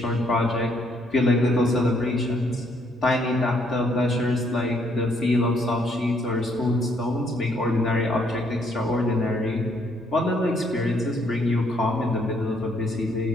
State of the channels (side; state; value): both; normal; correlation 0.69